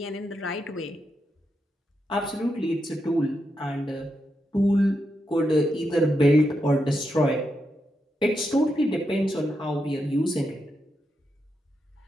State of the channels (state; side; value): normal; both; correlation 0.84